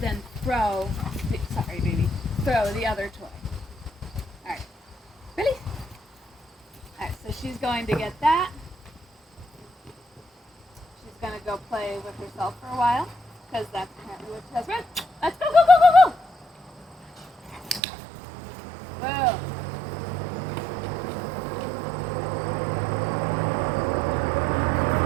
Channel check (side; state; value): left; drops out; at 17.8 s